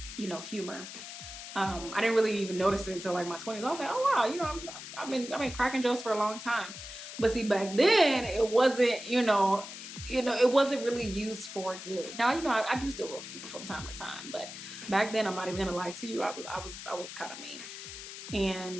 you know, humor. I didn't really even notice it until like my 20s. I was like, oh wow, you know, I've been cracking jokes for a long time. But see, back then it wasn't, you know, it wasn't really used for good. Now, you know, I do still roast people from time to time, but back then, I'm not even gonna lie to you, I was kind of mean.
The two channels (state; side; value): noise; left; hiss, 11 dB below the sound